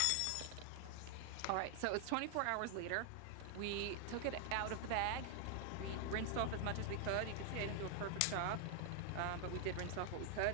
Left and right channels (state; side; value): different; both; correlation 0.00